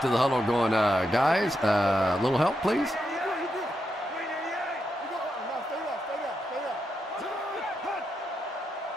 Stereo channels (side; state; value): both; normal; correlation 0.84